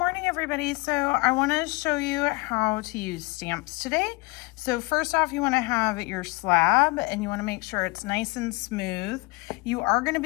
everybody. So I want to show you how to use stamps today. So first off, you want to have your slab and you want to make sure it's nice and smooth. You are going to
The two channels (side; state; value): right; quieter; 25.2 dB